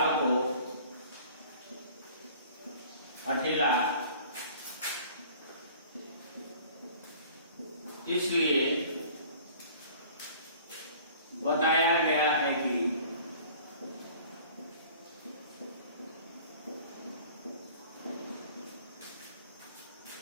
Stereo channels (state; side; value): inverted; both; correlation -0.48